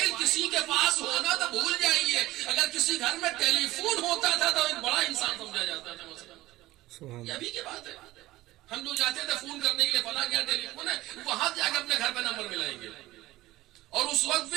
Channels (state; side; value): quieter; left; 17.3 dB